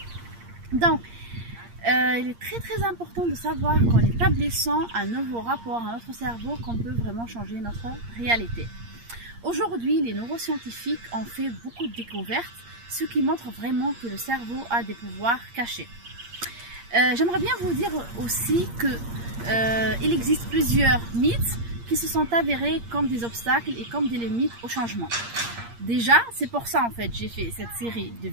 Donc, il est très important de savoir qu'en établissant un nouveau rapport à notre cerveau, qu'on peut vraiment changer notre réalité. Aujourd'hui, les neuroscientifiques ont fait beaucoup de découvertes, ce qui montre vraiment que le cerveau a des pouvoirs cachés. J'aimerais bien vous dire aussi qu'il existe plusieurs mythes qui se sont avérés comme des obstacles et comme des limites au changement. Déjà, c'est pour ça en fait j'ai fait cette série de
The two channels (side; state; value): left; late; 8.6 ms